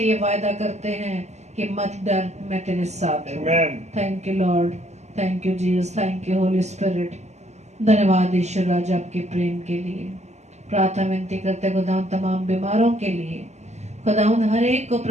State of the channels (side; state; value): left; late; 0.33 ms